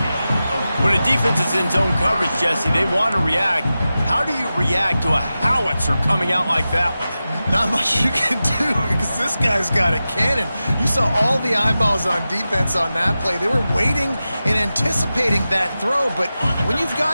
When a defense is in zone coverage, Jesse, they want to react. How do you react to a howitzer coming out like that one? Not much you can do because this guy's got a cannon. You saw all the eyeballs on defense on that play. They were waiting and anticipating that throw, but when you've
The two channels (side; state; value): both; inverted; correlation -0.93